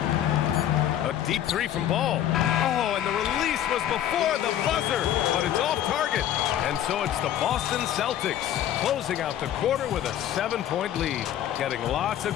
A deep 3 from Ball. Oh, and the release was before the buzzer, but it's off target. And so it's the Boston Celtics closing out the quarter with a 7-point lead. Getting lots of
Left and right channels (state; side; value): quieter; right; 11.2 dB